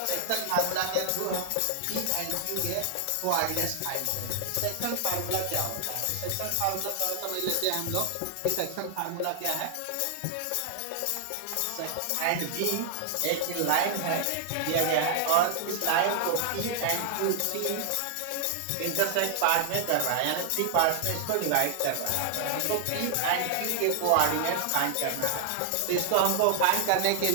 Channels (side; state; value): both; different; correlation 0.00